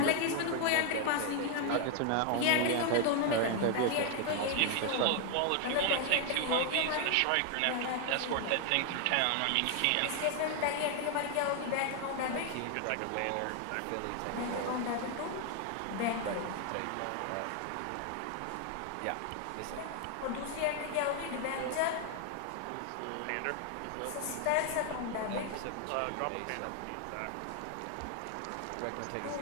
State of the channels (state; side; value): different; both; correlation 0.00